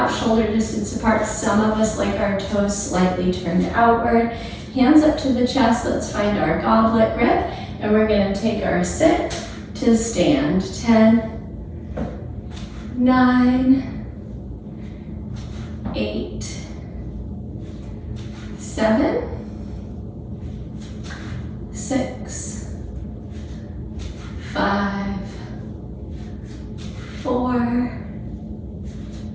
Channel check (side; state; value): both; identical; correlation 1.00